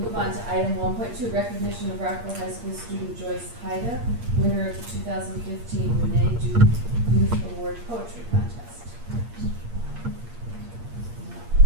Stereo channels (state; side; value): late; left; 8.6 ms